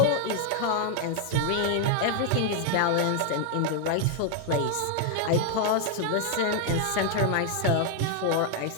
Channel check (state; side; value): different; both; correlation 0.00